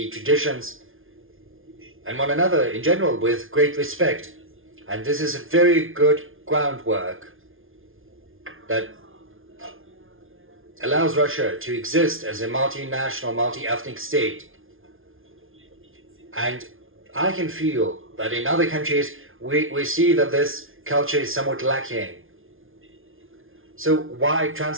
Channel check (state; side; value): late; left; 0.59 ms